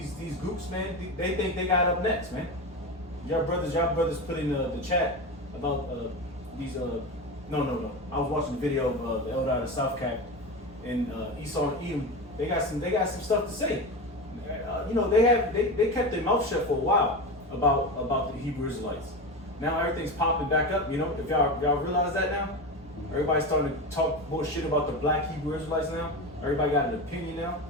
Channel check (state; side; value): normal; both; correlation 0.22